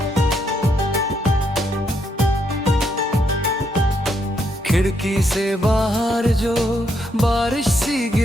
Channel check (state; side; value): normal; both; correlation 0.76